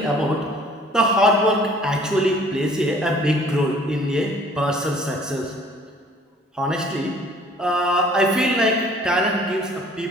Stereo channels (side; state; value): both; normal; correlation 0.54